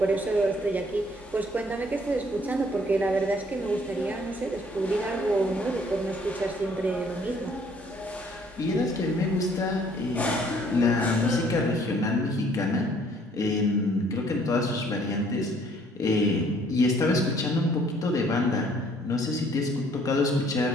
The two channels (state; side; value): normal; both; correlation 0.61